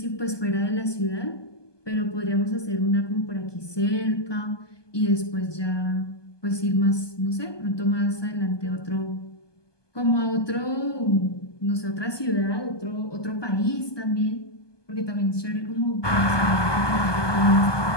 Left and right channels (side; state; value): right; late; 1.2 ms